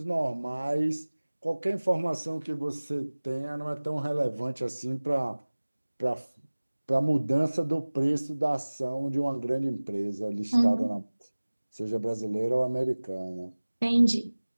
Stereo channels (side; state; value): both; inverted; correlation -1.00